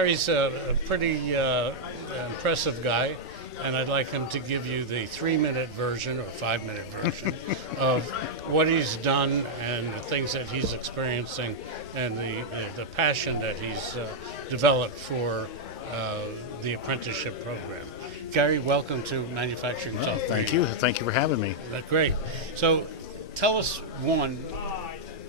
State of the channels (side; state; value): both; normal; correlation -0.04